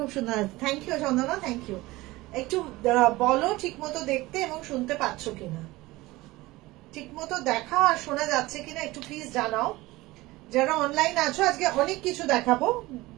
সুন্দর। Thank you Chandana, thank you. একটু বলো ঠিকমতো দেখতে এবং শুনতে পাচ্ছ কিনা, ঠিকমতো দেখা আর শোনা যাচ্ছে কিনা একটু প্লিজ জানাও। যারা অনলাইন আছো আজকে অনেক কিছু দেখাবো,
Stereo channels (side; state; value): left; quieter; 19.8 dB